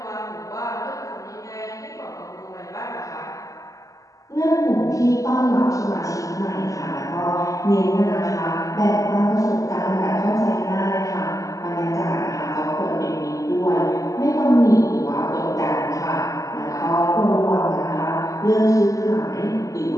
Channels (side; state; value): right; late; 0.16 ms